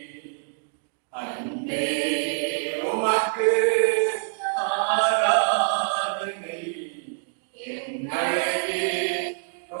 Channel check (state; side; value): silent; left; digital silence